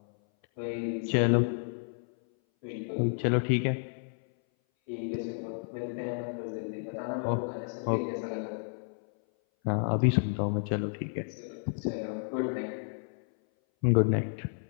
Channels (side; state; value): right; silent; 57 dB below the other